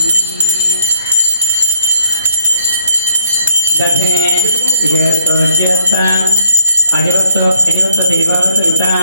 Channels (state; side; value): inverted; both; correlation -0.66